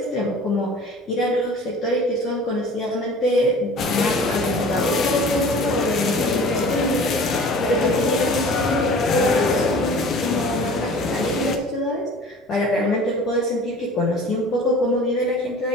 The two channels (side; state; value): both; normal; correlation 0.44